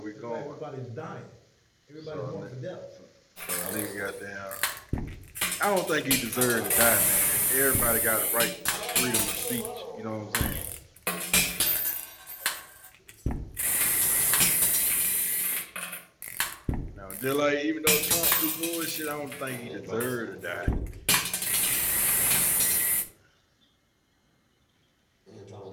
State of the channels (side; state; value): both; identical; correlation 1.00